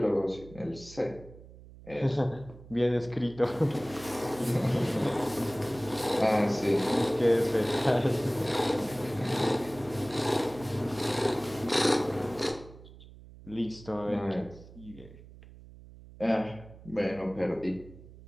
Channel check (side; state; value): right; noise; hum, 19 dB below the sound